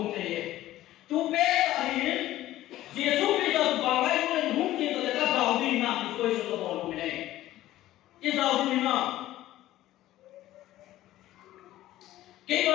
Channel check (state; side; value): quieter; right; 14.8 dB